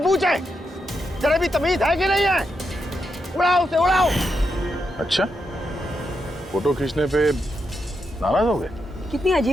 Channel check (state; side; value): normal; both; correlation 0.84